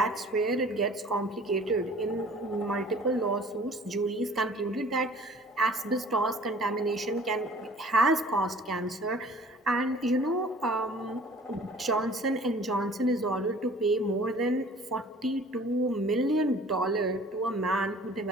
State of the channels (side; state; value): both; normal; correlation 0.50